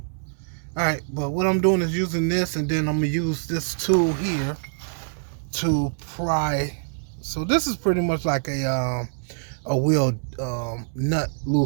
Alright, but what I'm doing is using this, and then I'm gonna use this tool here to pry. So this is pretty much like a wheel nut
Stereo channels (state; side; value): silent; left; digital silence